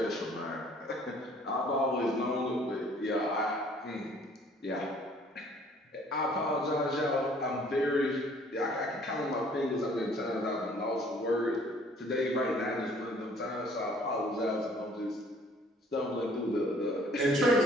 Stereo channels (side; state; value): both; normal; correlation 0.57